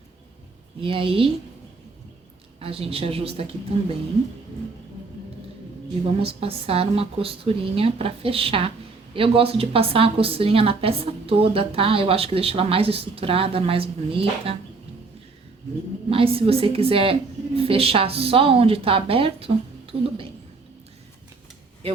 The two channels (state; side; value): quieter; left; 4.0 dB